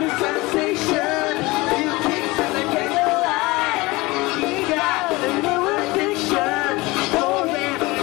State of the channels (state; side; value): quieter; right; 22.1 dB